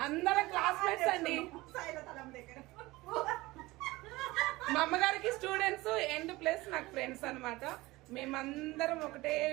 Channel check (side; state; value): left; quieter; 20.2 dB